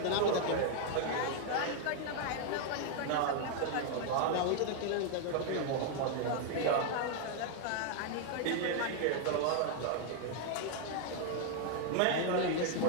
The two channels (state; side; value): different; both; correlation 0.00